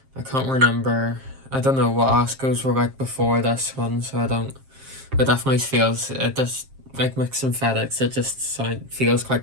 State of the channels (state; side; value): late; left; 7.5 ms